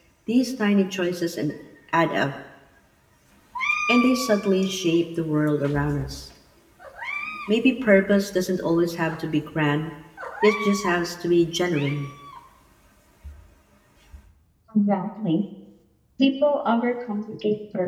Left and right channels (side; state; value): both; identical; correlation 1.00